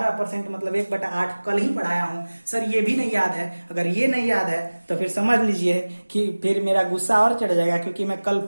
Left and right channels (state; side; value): inverted; both; correlation -1.00